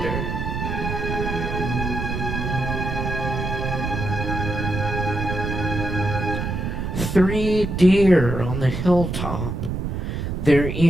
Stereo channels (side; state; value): right; noise; rumble, 3 dB below the sound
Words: Three deer on the hilltop, their